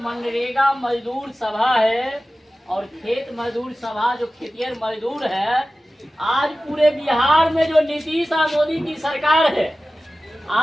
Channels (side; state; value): both; normal; correlation 0.96